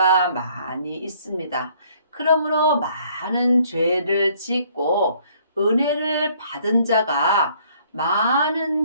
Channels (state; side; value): inverted; both; correlation -0.62